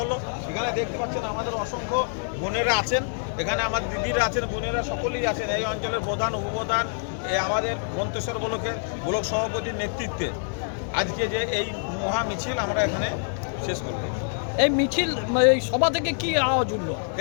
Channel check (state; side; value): silent; right; 61 dB below the other